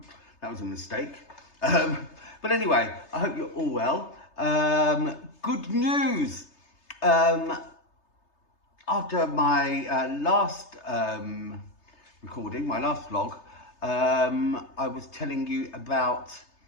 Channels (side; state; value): right; late; 3.3 ms